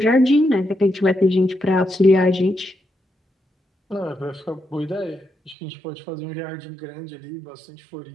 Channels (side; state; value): left; drops out; at 5.6 s